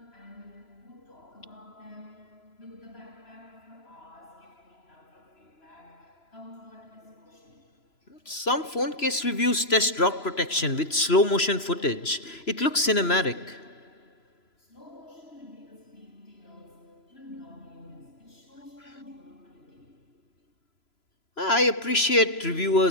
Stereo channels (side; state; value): right; late; 3.0 ms